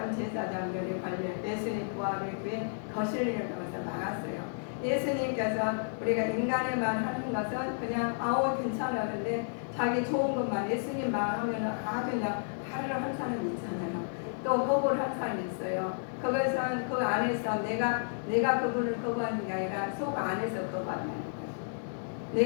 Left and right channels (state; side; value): silent; right; digital silence